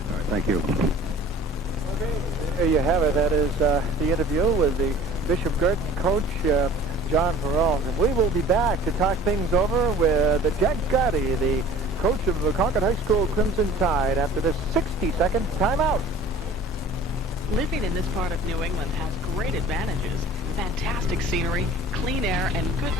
All right, thank you. Okay, there you have it. That is the interview with the Bishop Guertin coach, John Peralt. And we will be back to talk things over with Jack Gotti, the coach of the Concord High School Crimson Tide, after this 60-second timeout. Living in this part of New England has great advantages. Fantastic scenery, clean air, and good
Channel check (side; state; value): both; normal; correlation 0.46